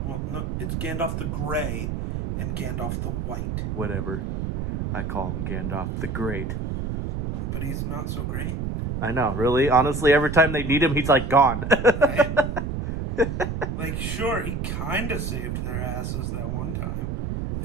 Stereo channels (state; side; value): noise; right; rumble, 3 dB below the sound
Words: Well, no, it's Gandalf the Gray and Gandalf the White. Whatever. I call him Gandalf the Great. But he's not so great. I know, really. Honestly, every time they need him, he's like gone. Right? Like, sure, he kind of saved their asses that one time